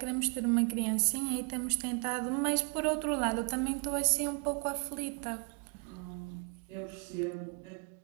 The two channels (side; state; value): left; quieter; 36.1 dB